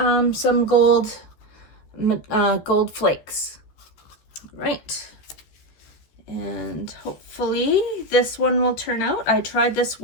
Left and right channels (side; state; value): right; late; 14 ms